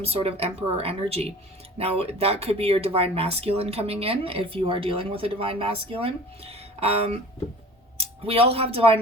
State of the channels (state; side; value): normal; both; correlation 0.43